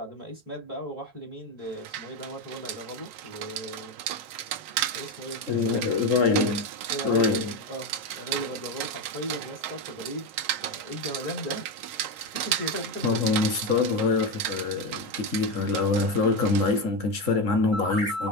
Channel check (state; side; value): late; left; 4.2 ms